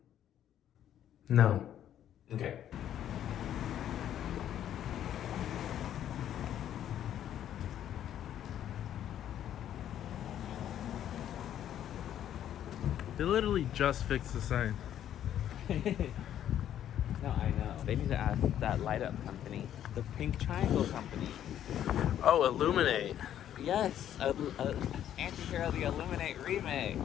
No. Okay. They literally just fixed the sign. No, I know. They need to ask that light up company, the Pink Triangle company. Oh, Illuminate. Yes, Anti-Hero the Illuminate remake.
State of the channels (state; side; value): quieter; right; 10.7 dB